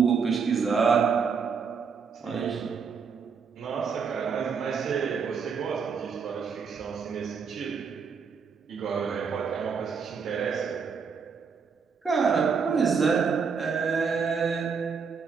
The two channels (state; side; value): quieter; left; 5.9 dB